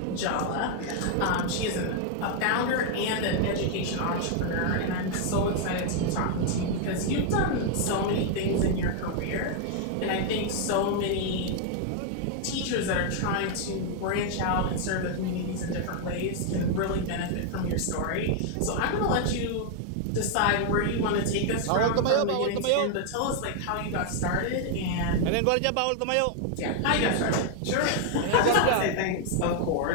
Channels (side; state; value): both; different; correlation 0.00